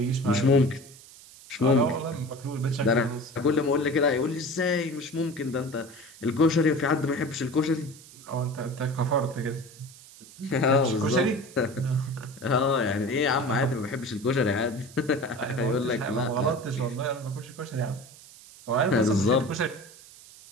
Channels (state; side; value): noise; right; hiss, 20 dB below the sound